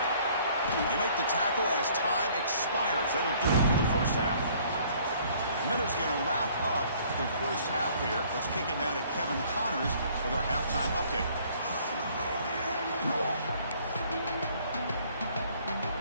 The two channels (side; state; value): both; inverted; correlation -0.58